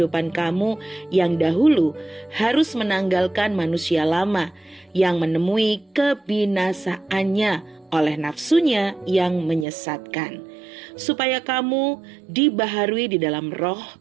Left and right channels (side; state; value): left; drops out; at 9.7 s